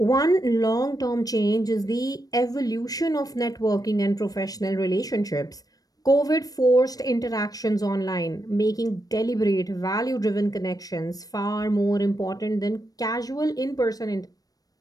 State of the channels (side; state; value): right; late; 0.18 ms